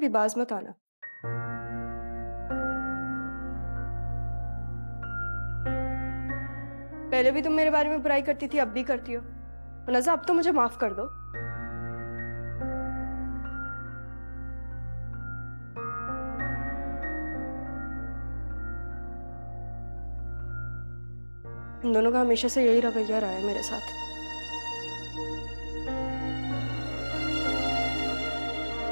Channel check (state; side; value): inverted; both; correlation -1.00